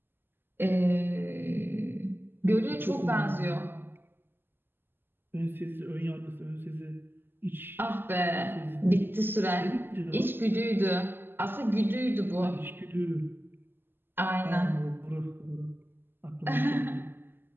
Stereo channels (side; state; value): left; late; 0.099 ms